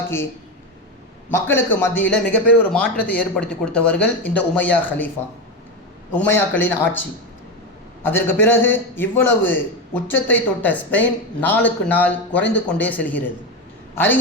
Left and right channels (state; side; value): normal; both; correlation 0.15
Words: மக்களுக்கு மத்தியில் மிகப்பெரிய ஒரு மாற்றத்தை ஏற்படுத்தி கொடுத்தவர்கள் இந்த உமையாக்களின் ஆட்சி. அதற்கு பிறகு இவ்வளவு உச்சத்தை தொட்ட ஸ்பெயின் நாளுக்கு நாள் குறைந்து கொண்டே செல்கிறது.